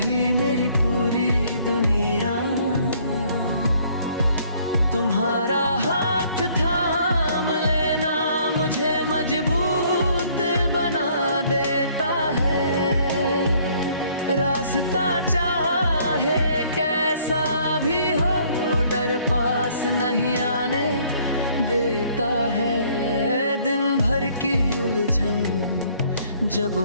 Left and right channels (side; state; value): both; inverted; correlation -0.61